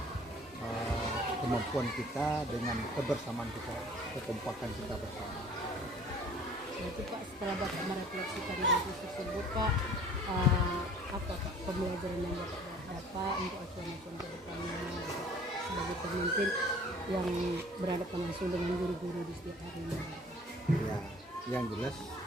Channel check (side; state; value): both; normal; correlation 0.50